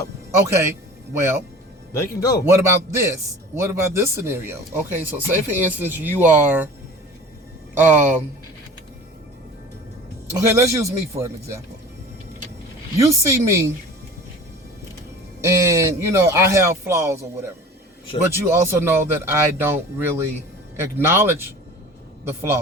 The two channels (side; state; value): both; normal; correlation 0.41